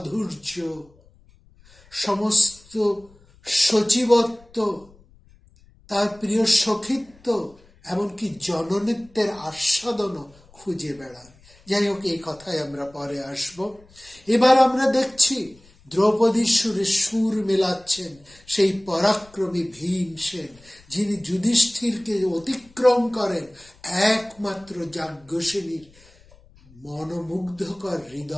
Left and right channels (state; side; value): noise; left; rumble, 27 dB below the sound